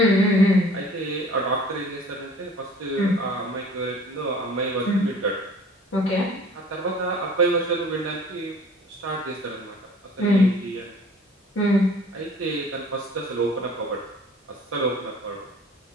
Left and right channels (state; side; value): normal; both; correlation 0.49